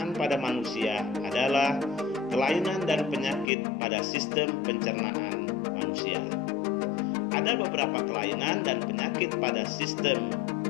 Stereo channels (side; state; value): right; drops out; at 3.5 s